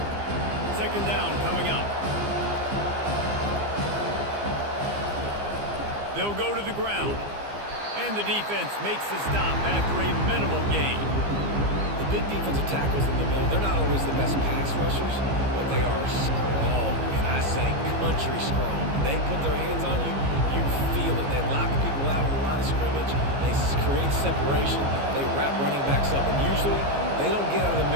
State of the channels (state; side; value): late; left; 15 ms